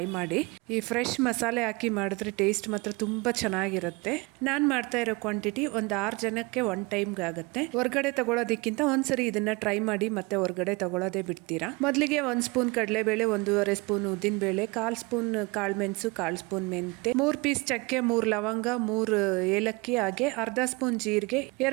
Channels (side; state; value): left; quieter; 25.6 dB